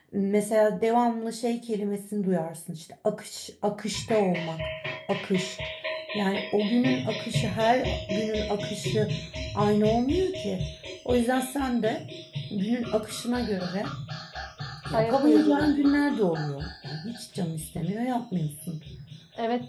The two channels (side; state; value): both; identical; correlation 1.00